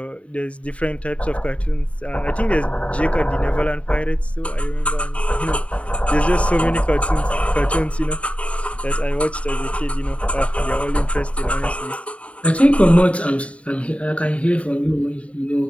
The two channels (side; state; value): right; late; 0.064 ms